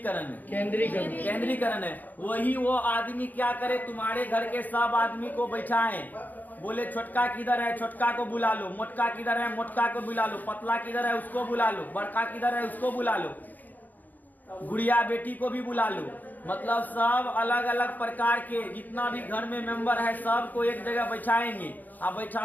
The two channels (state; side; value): late; right; 0.083 ms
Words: है? केंद्रीकरण है। वही वो आदमी क्या करे, तुम्हारे घर के सब आदमी को बैठाए, बोले छोटका किधर है, छोटका को बुला लो, मोटका किधर है, मोटका को बुला लो, पतला किधर है, उसको बुला लो, बड़का किधर है, उसको बुला लो, गुड़िया बेटी को भी बुला लो। मतलब सब अलग अलग प्रकार के जितना भी घर में मेंबर है सबको एक जगह बैठाएंगे। अब